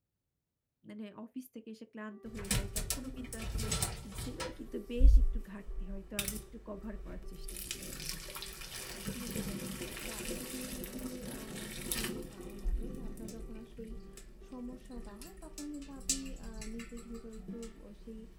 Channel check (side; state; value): both; identical; correlation 1.00